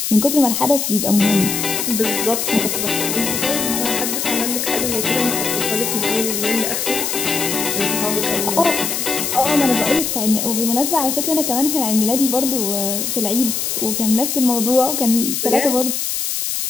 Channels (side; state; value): left; noise; hiss, 1 dB below the sound